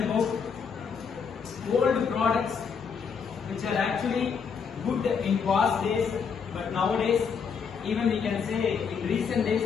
old products which are actually good in past days, but nowadays, even we can say in recent days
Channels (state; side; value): quieter; right; 6.3 dB